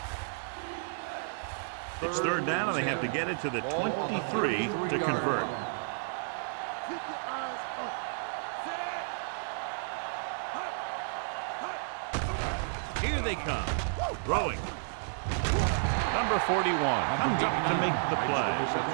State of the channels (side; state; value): left; silent; digital silence